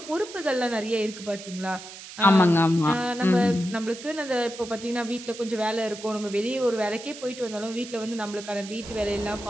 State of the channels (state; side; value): noise; right; hiss, 14 dB below the sound